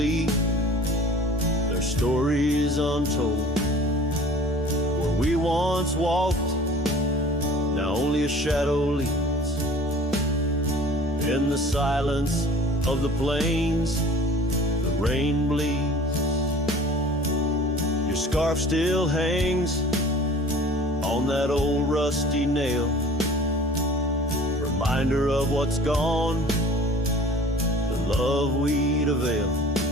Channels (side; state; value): both; normal; correlation 0.46